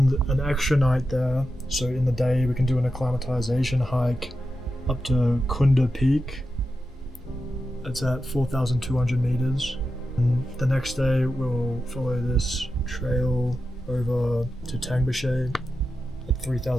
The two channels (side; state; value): both; normal; correlation 0.90